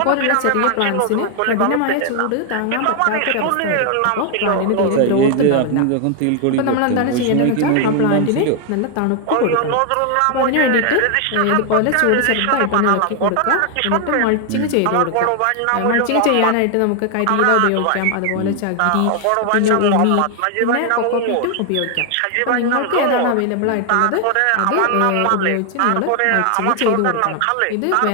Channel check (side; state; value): both; different; correlation 0.00